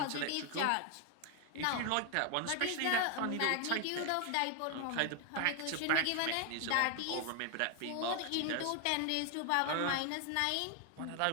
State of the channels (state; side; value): different; both; correlation 0.00